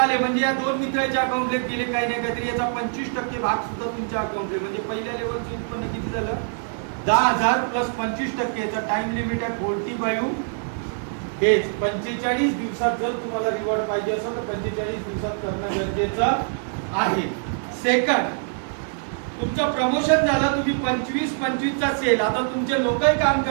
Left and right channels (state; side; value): silent; left; 63 dB below the other